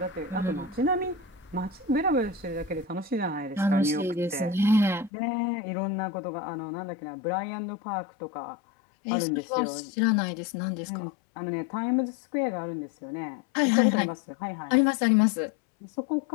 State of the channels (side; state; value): right; drops out; at 5.1 s